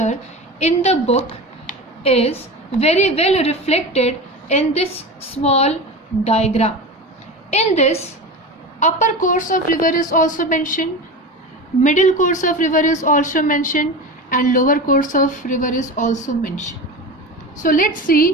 in the book is very well reflected in this small diagram. In this, upper course of river is also mentioned, middle course of river is also mentioned, and lower course of river is also mentioned. So let's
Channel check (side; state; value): both; normal; correlation 0.27